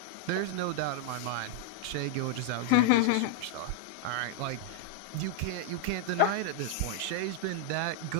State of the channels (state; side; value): different; both; correlation -0.01